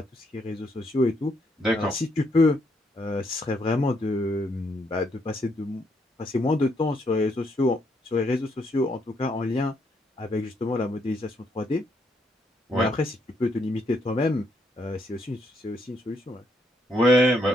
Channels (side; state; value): both; normal; correlation 0.74